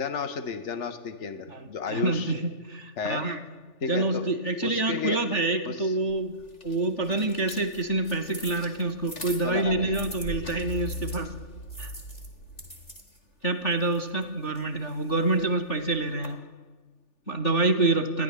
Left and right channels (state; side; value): late; right; 3.4 ms